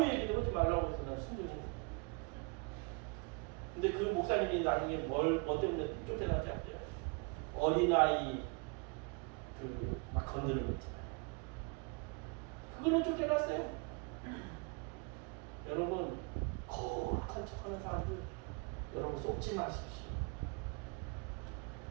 얘기도 하지 말라고 해서 난 순종했네. 근데 그 목사님이 나중에 뭐 때문에 쫓겨나지 않대요. 어린아이 막 건드는 거 있잖아요. 그걸로 쫓겨났어요. 여러분, 거룩한 척하는 사람들 여러분 속지 마십시오.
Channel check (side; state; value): left; quieter; 32.3 dB